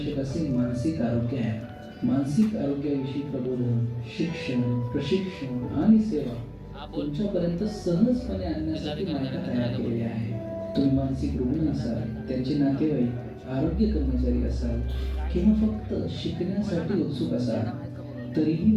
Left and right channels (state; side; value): identical; both; correlation 1.00